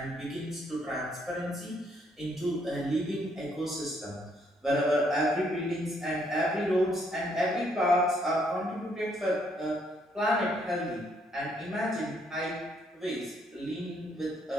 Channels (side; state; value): both; normal; correlation 0.70